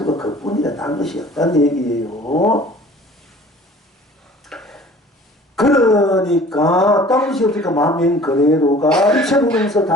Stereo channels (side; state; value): both; normal; correlation 0.48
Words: 그뿐이라 다른 것이 없다는 얘기예요. 그러니까 딴 것이 없으니까 마음인 그대로가 일체로면서